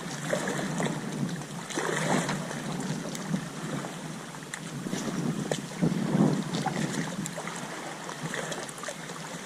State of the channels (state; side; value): identical; both; correlation 1.00